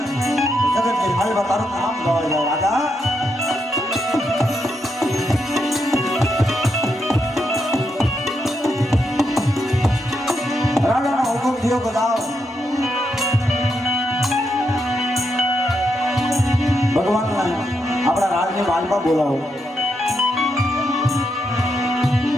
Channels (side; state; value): both; normal; correlation 0.81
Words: જગતની માલવા તારું નામ ગવાય જાય રાજા. રાજાનો હુકમ થયો બધા ભગવાનના આપણા રાજની માલમાં બોલાવો.